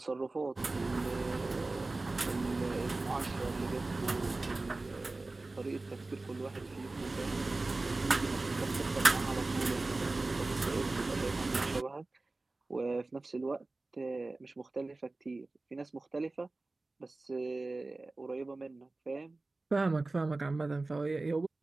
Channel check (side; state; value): left; quieter; 3.2 dB